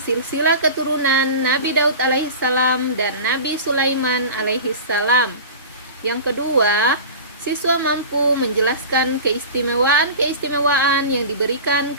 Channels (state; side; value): inverted; both; correlation -0.34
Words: silsilah keturunan Nabi Daud alaihissalam dan Nabi Sulaiman alaihissalam. Yang kedua, siswa mampu menjelaskan keistimewaan yang diberikan